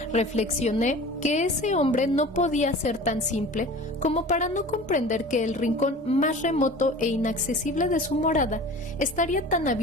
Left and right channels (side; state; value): both; normal; correlation 0.40